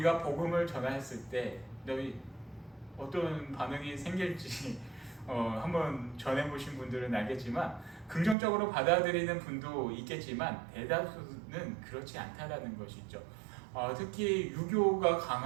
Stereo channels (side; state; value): left; drops out; at 8.3 s